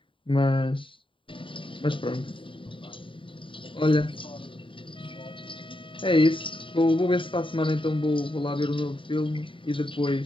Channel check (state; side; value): late; right; 0.25 ms